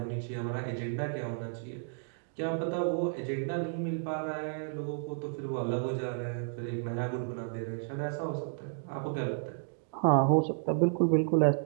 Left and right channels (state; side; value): silent; left; digital silence